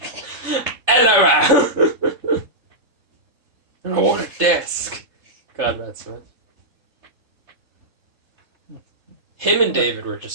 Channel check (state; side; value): late; left; 3.5 ms